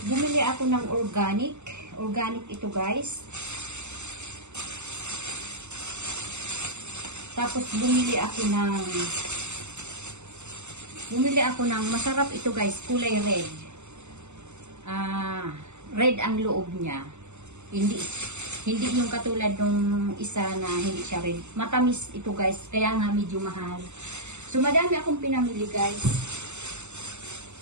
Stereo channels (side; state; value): left; late; 0.83 ms